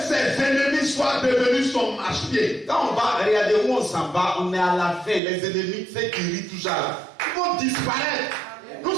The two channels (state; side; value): drops out; left; at 5.2 s